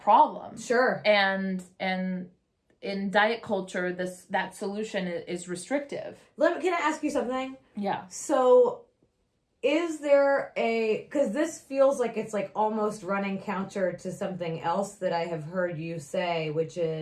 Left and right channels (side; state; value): both; identical; correlation 1.00